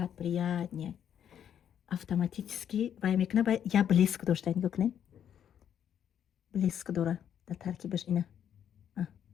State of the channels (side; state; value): right; quieter; 9.3 dB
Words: приятнее. Автоматически вай мекуна ба я блеск дошта. Нигоҳ кунен. Блеск дора дар таркибаш ина.